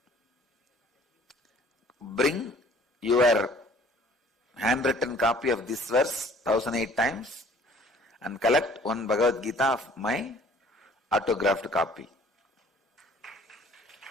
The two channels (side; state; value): both; normal; correlation 0.53